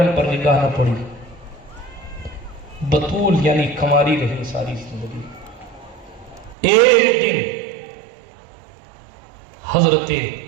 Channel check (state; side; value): drops out; left; at 6.6 s